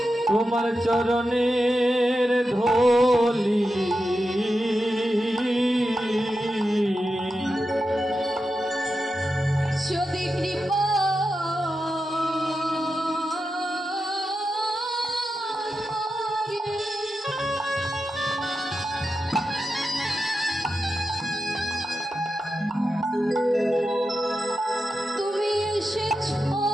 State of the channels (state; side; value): normal; both; correlation 0.89